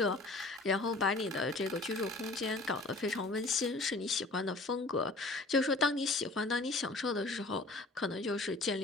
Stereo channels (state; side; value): quieter; right; 3.1 dB